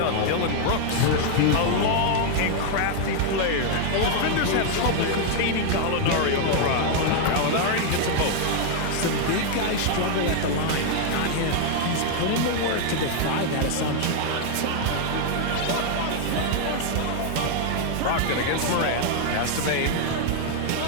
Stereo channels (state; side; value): different; both; correlation 0.00